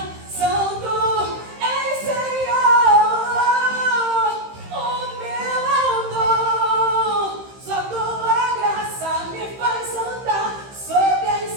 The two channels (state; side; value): late; left; 15 ms